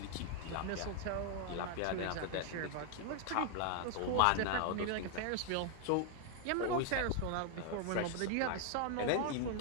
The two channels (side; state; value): both; different; correlation 0.00